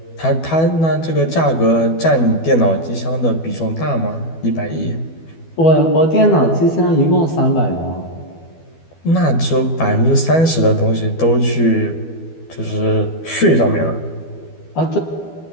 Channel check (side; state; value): right; late; 12 ms